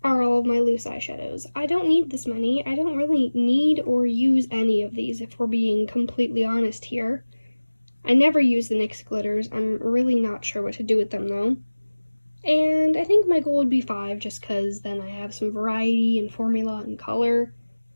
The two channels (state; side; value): inverted; both; correlation -1.00